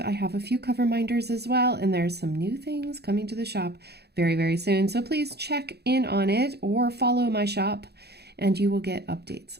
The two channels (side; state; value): left; late; 0.48 ms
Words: have a few cover minders as well, and there's some new things coming to the shop very, very soon, so please check in on it or follow my shop and you will get updates.